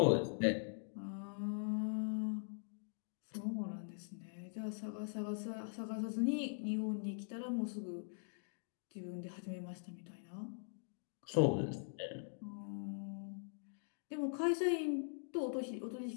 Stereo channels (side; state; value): right; silent; digital silence